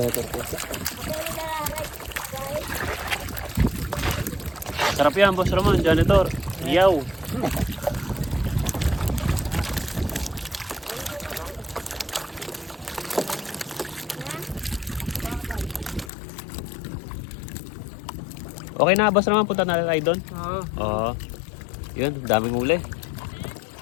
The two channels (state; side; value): drops out; right; at 16.1 s